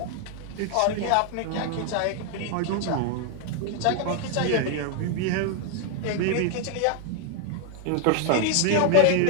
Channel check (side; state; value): both; different; correlation 0.00